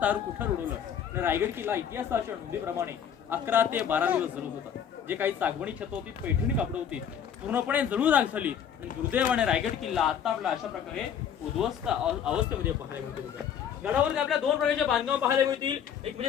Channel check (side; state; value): right; quieter; 8.4 dB